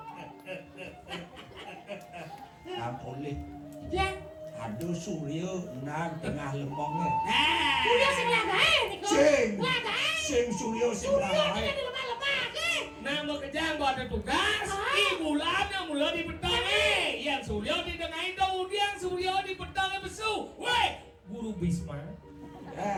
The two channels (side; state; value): both; identical; correlation 1.00